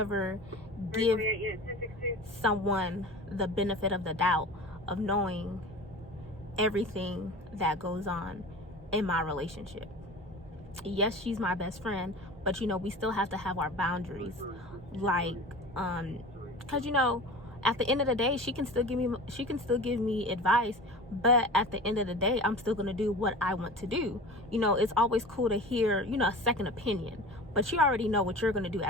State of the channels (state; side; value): normal; both; correlation 0.36